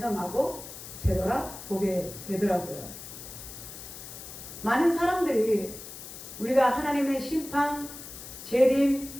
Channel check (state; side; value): noise; left; hiss, 12 dB below the sound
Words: 되돌아보게 되더라고요. 많은 사람들이 우리가 하나님의 심판, 재림,